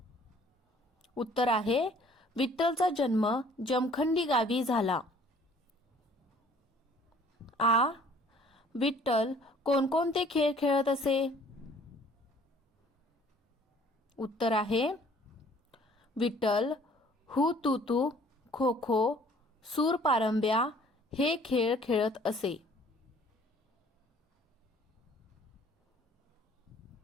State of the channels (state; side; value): normal; both; correlation 0.55